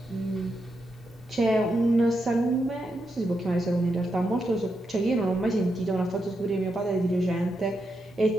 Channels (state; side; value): normal; both; correlation 0.84